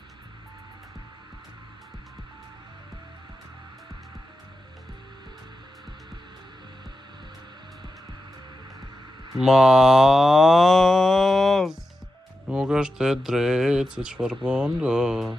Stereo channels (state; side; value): normal; both; correlation 0.90